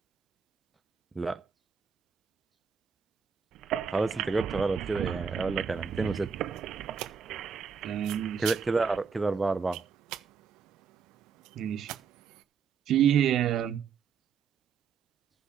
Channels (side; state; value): left; quieter; 6.2 dB